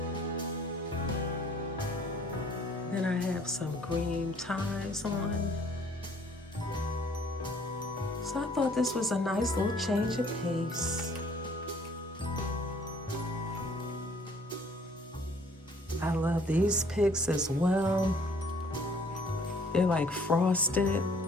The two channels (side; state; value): both; normal; correlation 0.58